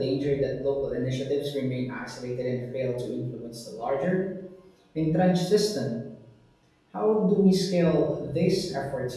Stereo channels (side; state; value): both; identical; correlation 1.00